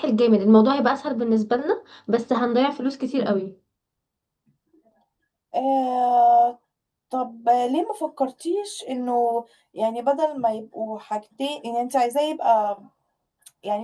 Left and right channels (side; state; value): both; identical; correlation 1.00